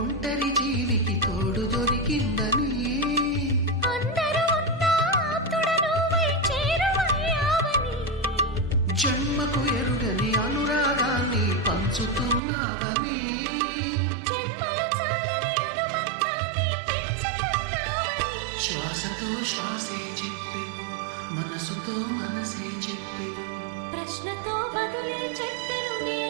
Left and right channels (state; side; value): drops out; left; at 12.4 s